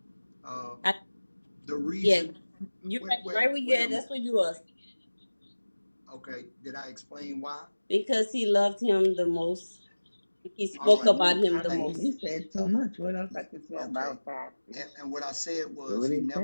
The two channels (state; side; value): inverted; both; correlation -1.00